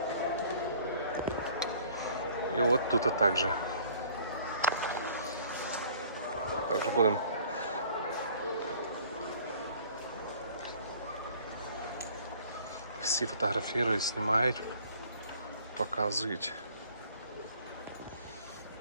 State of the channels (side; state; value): both; inverted; correlation -0.53